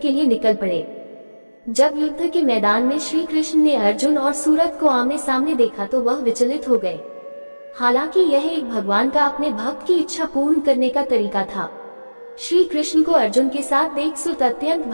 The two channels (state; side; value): inverted; both; correlation -1.00